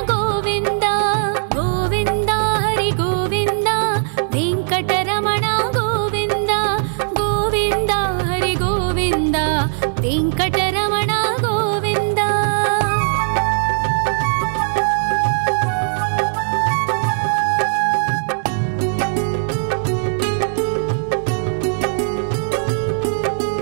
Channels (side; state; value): left; silent; digital silence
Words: गोविन्द गोविन्द हरि गोविन्द वेंकटरमण गोविन्द गोविन्द हरि गोविन्द वेंकटरमण गोविन्द